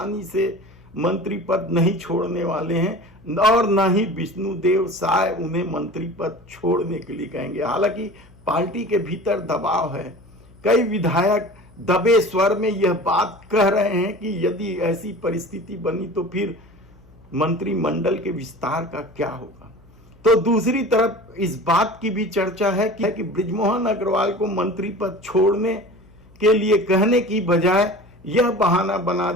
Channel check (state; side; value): noise; left; hum, 26 dB below the sound